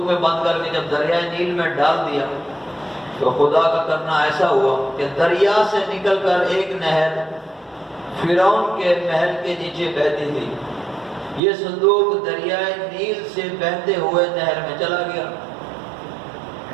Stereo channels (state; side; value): drops out; left; at 11.4 s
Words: میں بند کر کے جب دریائے نیل میں ڈال دیا تو خدا کا کرنا ایسا ہوا کہ دریا سے نکل کر ایک نہر فرعون کے محل کے نیچے بہتی تھی۔ یہ صندوق دریائے نیل سے بہتے ہوئے نہر میں چلا گیا۔